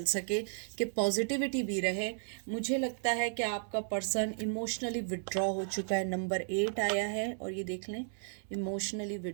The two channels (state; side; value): silent; left; 55 dB below the other